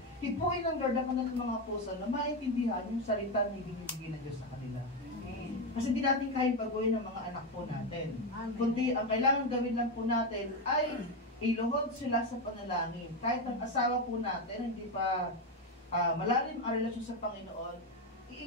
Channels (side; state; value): both; normal; correlation 0.11